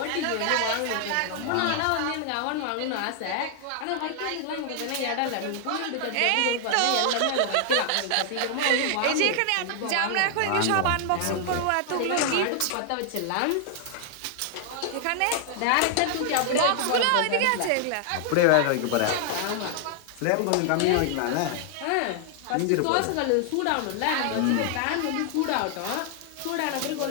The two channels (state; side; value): different; both; correlation 0.00